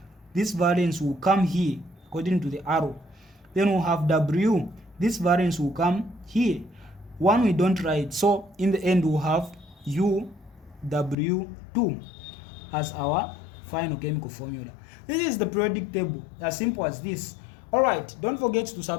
This valence will come here according to the arrow. Then we'll have W. This valence will come here. 1 we don't write. So in the end, we'll have UW2 as our final chemical formula. This is the periodic table, as simple as this. Alright, don't forget to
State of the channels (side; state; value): right; drops out; at 11.2 s